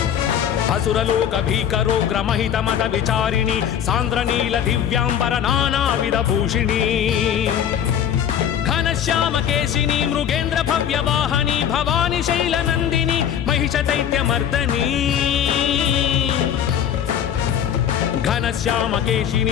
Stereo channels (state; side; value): quieter; right; 9.2 dB